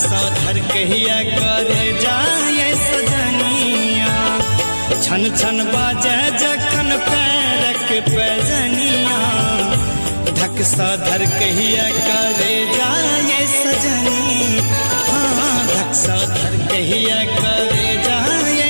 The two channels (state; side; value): inverted; both; correlation -1.00